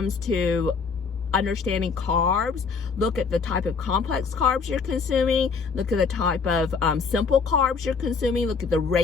to understanding carbs, look at the type of complex carbs you're consuming, look at the type of simple carbs you're consuming, look at the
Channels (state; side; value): quieter; right; 5.2 dB